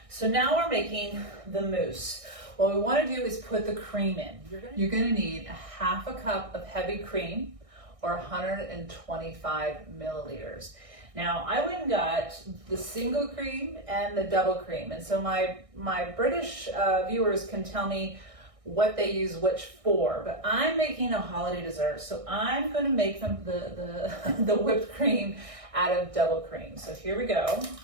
so now we're making the mousse. What we wanna do is put the cream in. You're gonna need a half a cup of heavy cream, or 125 milliliters. Now, I went and got the single cream and the double cream, and so my British viewers can tell me what they use which for, but I'm making a holiday dessert, so I'm going to make them the whipped cream out of double cream. So here we go.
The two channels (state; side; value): late; left; 1.6 ms